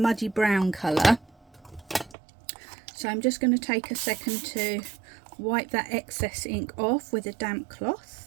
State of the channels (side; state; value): left; drops out; at 2.1 s